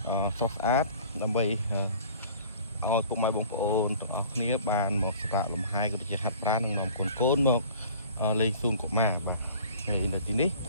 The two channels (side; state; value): both; inverted; correlation -0.47